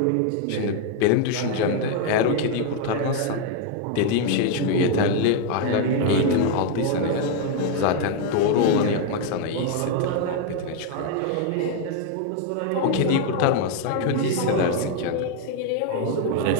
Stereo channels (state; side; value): different; both; correlation 0.01